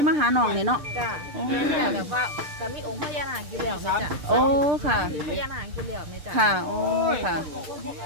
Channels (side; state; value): left; late; 6.7 ms